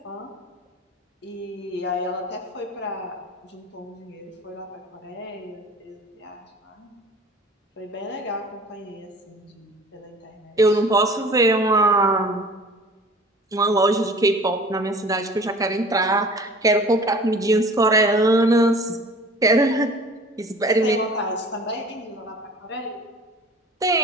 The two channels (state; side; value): normal; both; correlation 0.45